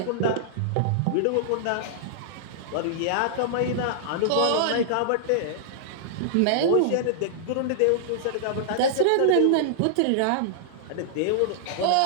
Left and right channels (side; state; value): both; different; correlation -0.01